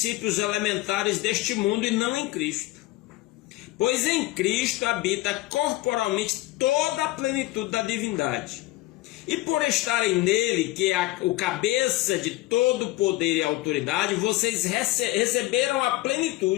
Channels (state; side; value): quieter; right; 18.1 dB